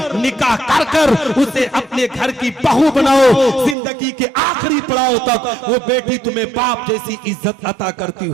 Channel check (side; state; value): left; drops out; at 3.8 s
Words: निकाह कर कर उसे अपने घर की बहू बनाओ। जिंदगी के आखिरी पड़ाव तक वो बेटी तुम्हें बाप जैसी इज्जत अता करती